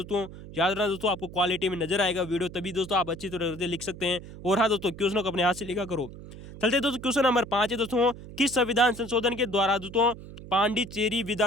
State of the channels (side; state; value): right; noise; hum, 14 dB below the sound